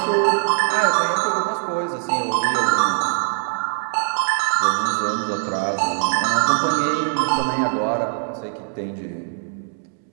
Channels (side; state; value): left; silent; 65 dB below the other